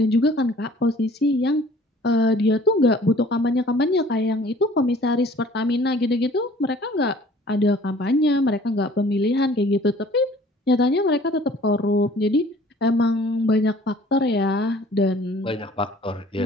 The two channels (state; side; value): normal; both; correlation 0.52